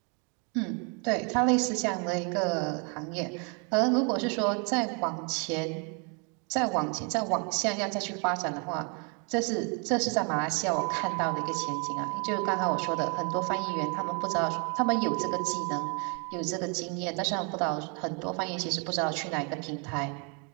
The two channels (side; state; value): left; quieter; 36.1 dB